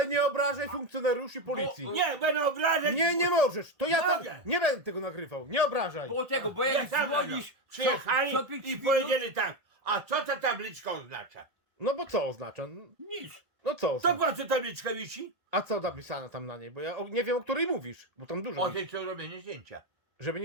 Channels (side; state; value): left; late; 1.9 ms